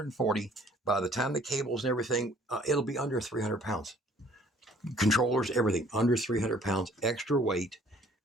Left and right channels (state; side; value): normal; both; correlation 0.57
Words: By the time the cables and everything, it'll be under 300 pounds. Controllers, everything, under 300 pounds, extra weight.